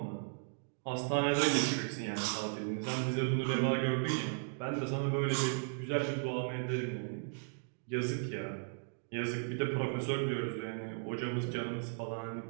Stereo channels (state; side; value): silent; left; digital silence